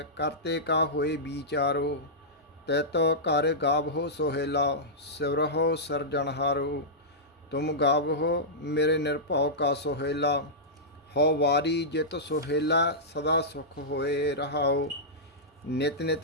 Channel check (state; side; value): normal; both; correlation -0.12